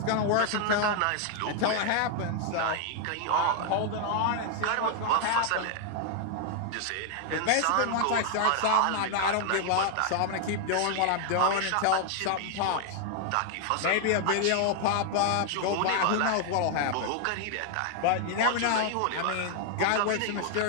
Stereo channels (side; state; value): both; different; correlation 0.00